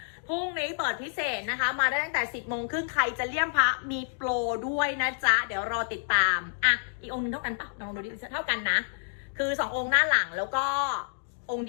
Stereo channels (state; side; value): silent; right; digital silence